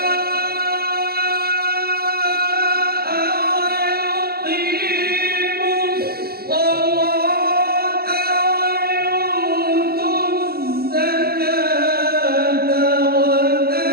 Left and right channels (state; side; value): late; left; 0.45 ms